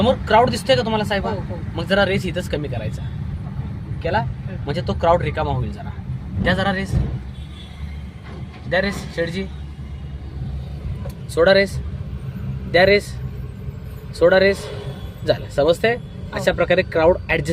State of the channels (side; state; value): both; identical; correlation 1.00